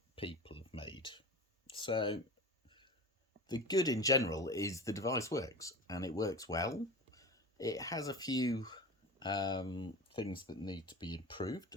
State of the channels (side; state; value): both; normal; correlation 0.32